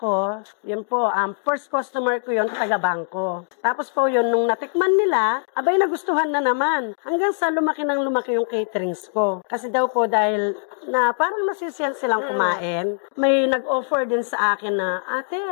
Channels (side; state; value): right; silent; 64 dB below the other